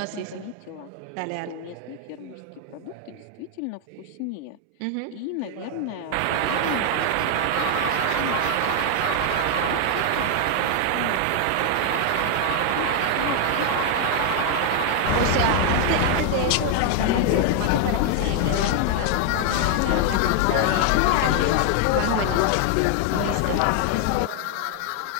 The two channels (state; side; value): different; both; correlation 0.00